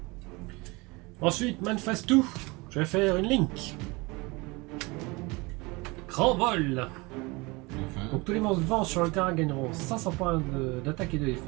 Ensuite, Man Phase 2, je vais faire une link. Grand vol. Donc tous les monstres vents sur le terrain gagneront 500 points d'attaque et de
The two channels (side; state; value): left; quieter; 25.1 dB